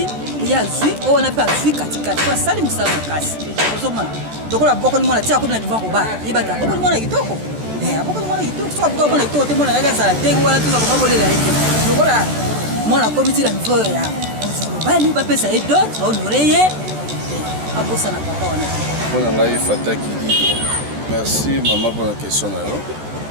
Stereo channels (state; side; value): late; left; 14 ms